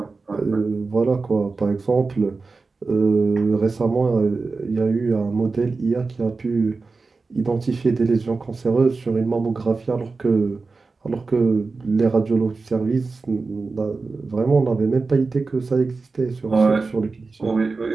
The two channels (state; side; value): quieter; left; 4.1 dB